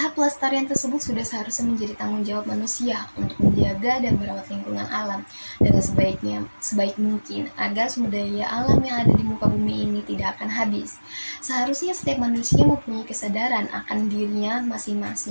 pelestarian tersebut sudah seharusnya menjadi tanggung jawab manusia untuk menjaga dan merawat lingkungan alam dengan sebaik mungkin agar sumber daya alam yang ada di muka bumi ini tidak akan habis. Seharusnya setiap manusia mempunyai kesadaran akan dirinya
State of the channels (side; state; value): both; inverted; correlation -1.00